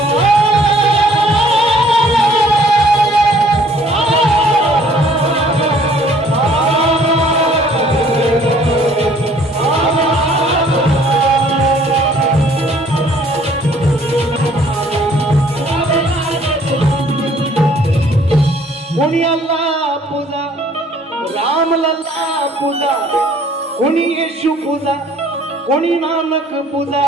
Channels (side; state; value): both; normal; correlation 0.58